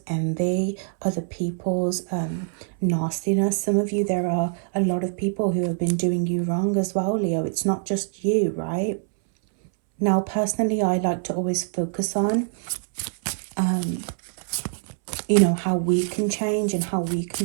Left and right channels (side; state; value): left; silent; 62 dB below the other